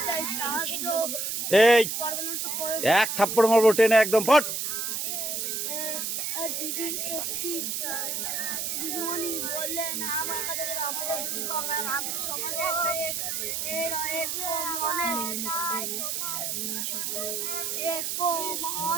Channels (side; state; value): right; noise; hiss, 2 dB below the sound